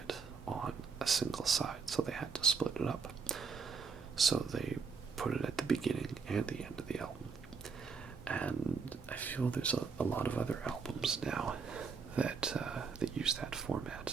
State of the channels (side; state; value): left; quieter; 5.3 dB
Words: on a single side, so they had to split it up. So they put it at the beginning and the end of the album. And I feel there's a lot of other albums now that use that